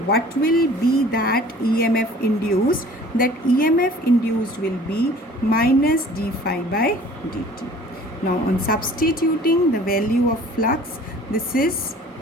will be that EMF induced? That EMF induced will be minus d phi by dt. Now on substituting the value of flux, this is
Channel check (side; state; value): both; normal; correlation 0.49